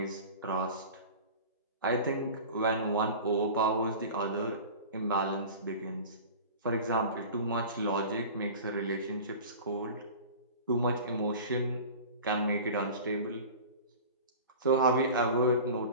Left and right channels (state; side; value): inverted; both; correlation -0.36